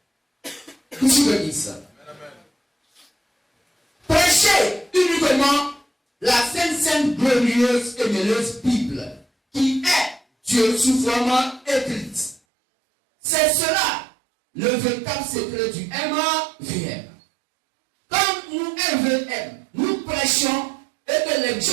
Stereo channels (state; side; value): drops out; left; at 12.4 s